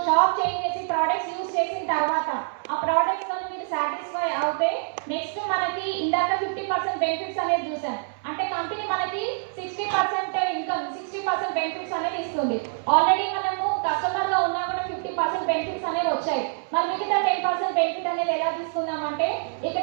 షాప్ చేంజ్ చేసి ప్రోడక్ట్స్ యూజ్ చేసిన తర్వాత ఆ ప్రోడక్ట్స్తో మీరు సాటిస్ఫై అవుతే నెక్స్ట్ మనకి ఇందాక 50% బెనిఫిట్స్ అనేది చూసాం. అంటే కంపెనీ మనకి 60% ఇన్కమ్, 60% బెనిఫిట్స్ అనేది ఇస్తుంది. ఆల్రెడీ మనము కస్టమర్గా ఉన్నా కూడా 50% బెనిఫిట్స్ అనేవి వచ్చాయి. మరి మిగతా 10% బెనిఫిట్ అనేది ఎలా తీసుకుందామంటే ఇక్కడ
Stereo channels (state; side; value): silent; left; 61 dB below the other